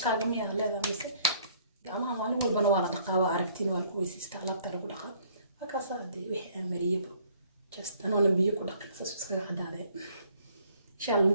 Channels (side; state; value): both; inverted; correlation -0.61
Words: جميع هذا مثل جماعة وانو والبنوارة دقاوة عرفتين والكويس استعلاب ترى بدقة هكذا صادق وحي مريبو just أنا نبيه كل دقيقة سبسكرايب عدادة إن شاء الله